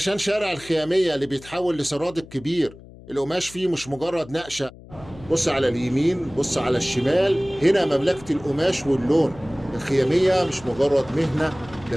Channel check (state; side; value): noise; left; hum, 20 dB below the sound